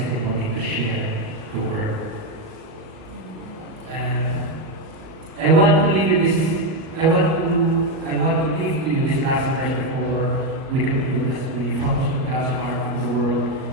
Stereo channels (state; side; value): late; left; 37 ms